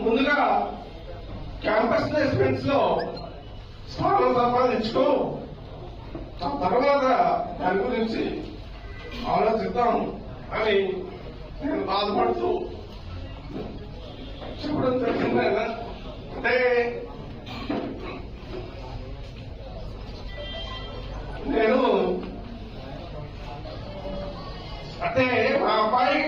ముందుగా క్యాంపస్ ప్లేస్మెంట్స్ లో స్థానం సంపాదించుకో, ఆ తర్వాత దాని గురించి ఆలోచిద్దాం అని నేను బాధపడుతూ చెప్పడం జరిగింది. అంటే మా అబ్బాయికి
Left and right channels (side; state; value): both; identical; correlation 1.00